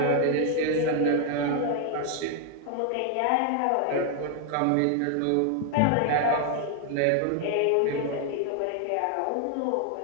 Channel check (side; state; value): both; different; correlation 0.00